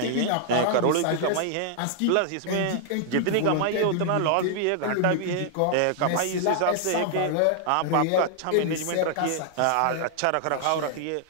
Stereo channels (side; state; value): both; different; correlation -0.01